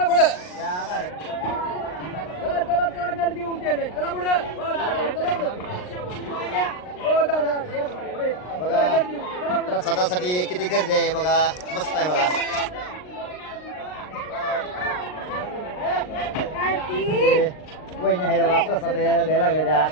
चला गर्दी उचलले चला पुढे बघा प्रसादासाठी किती गर्दी आहे बघा. मस्त आहे बघा. वहिनी आहे बघा प्रसाद द्यायला लागले त्या.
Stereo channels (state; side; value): late; right; 39 ms